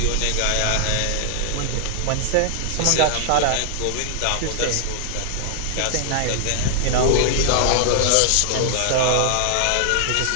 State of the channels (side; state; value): both; different; correlation 0.00